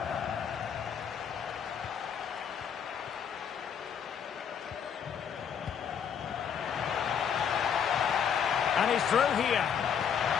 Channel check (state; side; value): quieter; right; 7.7 dB